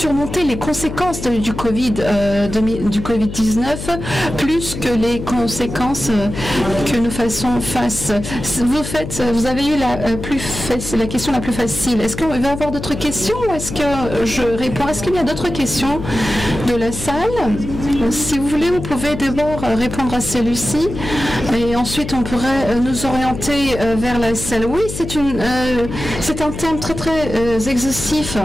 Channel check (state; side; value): noise; left; hum, 8 dB below the sound